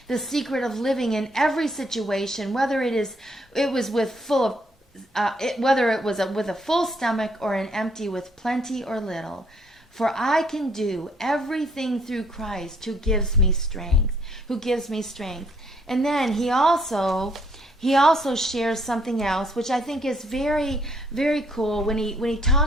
the secret of living in every situation, whether it was with full of whether it was with a full stomach or an empty, with plenty or little. For I can do everything through Christ who gives me strength, And then he also shares something else, which I think is very, very cool, when he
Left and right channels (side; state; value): both; normal; correlation 0.67